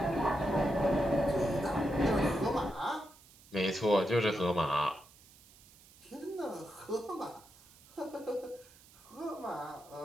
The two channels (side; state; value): right; noise; hiss, 25 dB below the sound